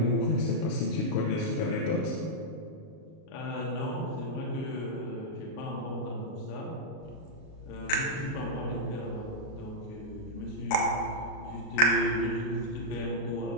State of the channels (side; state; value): right; late; 38 ms